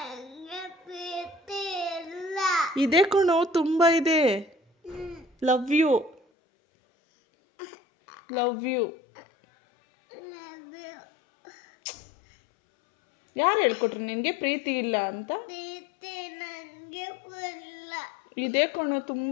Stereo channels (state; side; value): drops out; right; at 6.2 s